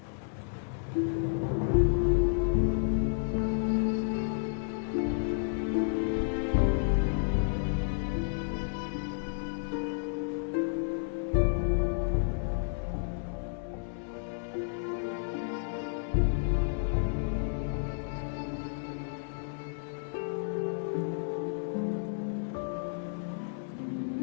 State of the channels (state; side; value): silent; right; 56 dB below the other